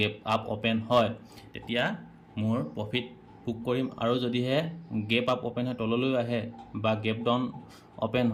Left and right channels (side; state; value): both; identical; correlation 1.00